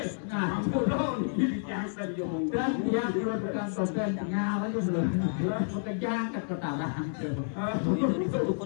ini jangan diomong dan dia bukan sopan tinggal aja belum bekerja ke ketaran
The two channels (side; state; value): right; silent; digital silence